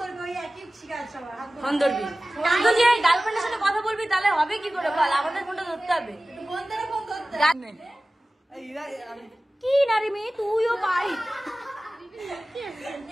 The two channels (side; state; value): both; normal; correlation 0.97